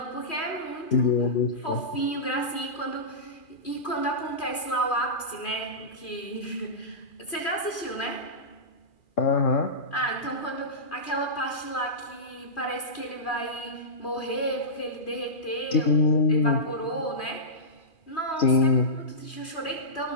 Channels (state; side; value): late; right; 2.4 ms